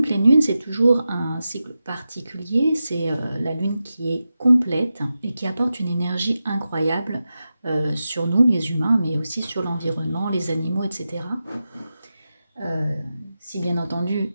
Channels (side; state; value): both; inverted; correlation -0.92